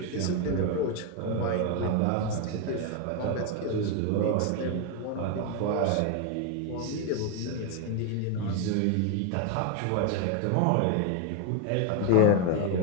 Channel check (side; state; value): both; different; correlation 0.01